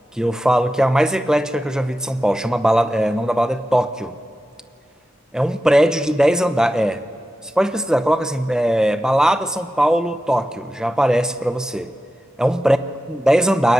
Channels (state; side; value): normal; both; correlation 0.92